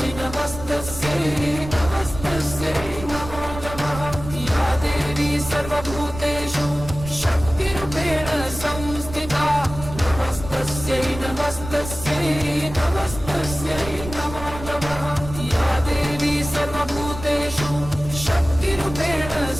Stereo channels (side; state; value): right; noise; rumble, 11 dB below the sound